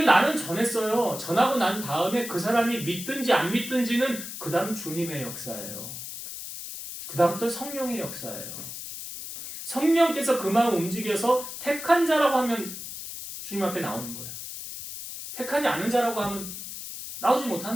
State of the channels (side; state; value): left; noise; hiss, 9 dB below the sound